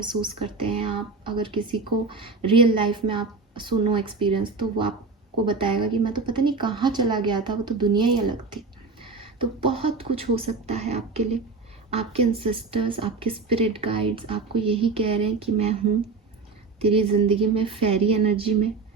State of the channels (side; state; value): left; quieter; 4.2 dB